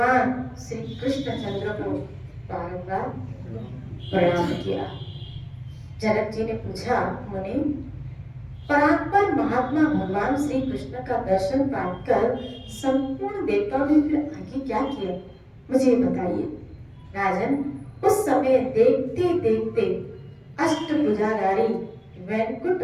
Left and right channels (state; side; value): identical; both; correlation 1.00